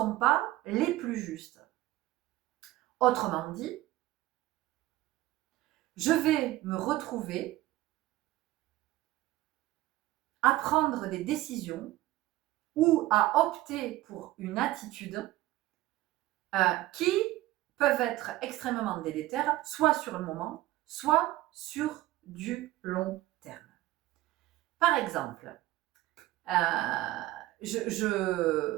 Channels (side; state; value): left; quieter; 16.2 dB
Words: pas les plus justes. Autrement dit, je vais me retrouver à prendre des décisions ou à opter pour une attitude qui peuvent être extrêmement délétères, soit sur le moment, soit sur du long terme. Par exemple, je